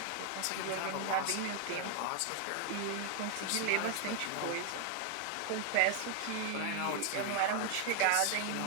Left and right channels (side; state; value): both; different; correlation 0.00